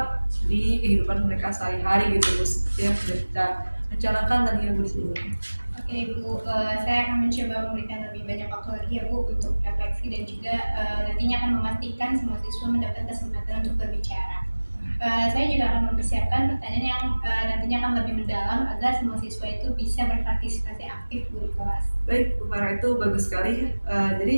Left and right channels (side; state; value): both; inverted; correlation -1.00